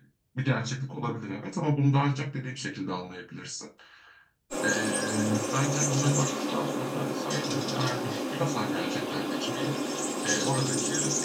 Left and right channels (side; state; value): both; identical; correlation 1.00